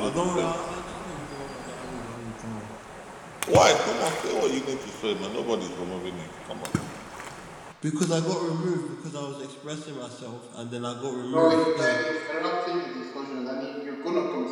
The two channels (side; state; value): both; identical; correlation 1.00